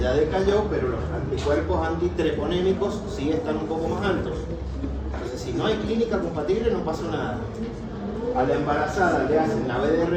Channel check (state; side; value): identical; both; correlation 1.00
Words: decayó, pero los anticuerpos antitreponémicos sí están un poco más altos. Entonces, si no hay clínica compatible, no pasa nada. A la embarazada le hacen la